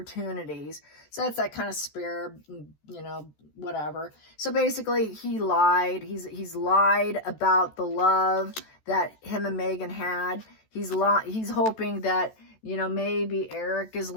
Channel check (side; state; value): right; late; 14 ms